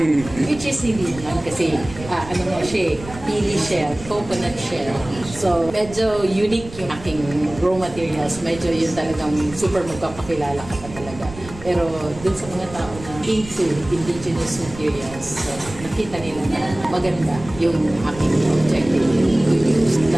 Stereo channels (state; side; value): noise; right; rumble, 15 dB below the sound